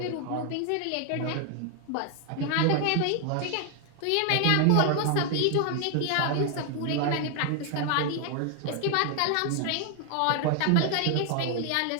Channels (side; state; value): both; different; correlation 0.00